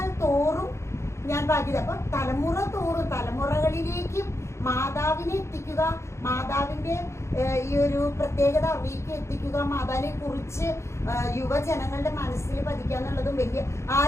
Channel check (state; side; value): late; right; 0.13 ms